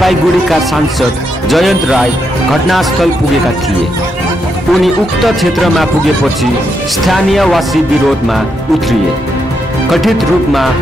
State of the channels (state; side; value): normal; both; correlation 0.81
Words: सांसद जयन्त राय घटनास्थल पुगेका थिए। उनी उक्त क्षेत्रमा पुगेपछि स्थानीयवासी विरोधमा उत्रिए। कथित रूपमा